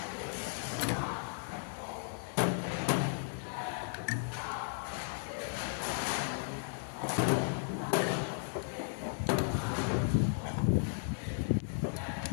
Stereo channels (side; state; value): right; silent; digital silence